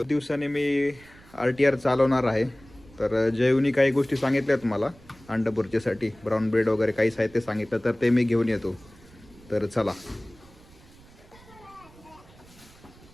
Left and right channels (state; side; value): noise; right; rumble, 24 dB below the sound